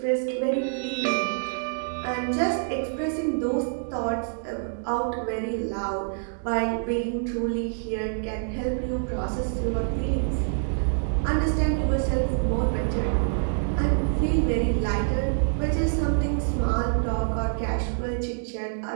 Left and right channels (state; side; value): silent; left; digital silence